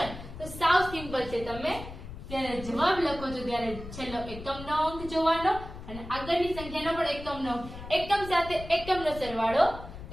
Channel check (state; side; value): noise; left; rumble, 12 dB below the sound